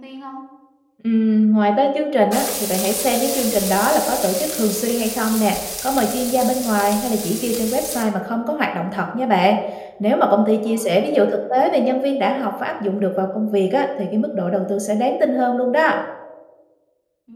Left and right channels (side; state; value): both; identical; correlation 1.00